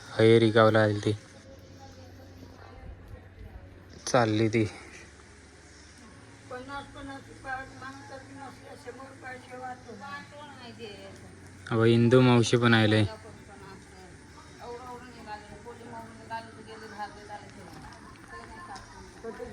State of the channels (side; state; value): both; identical; correlation 1.00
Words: हयेरी गावला आली ती चालली ती. अहो इंदू मावशी पण आले.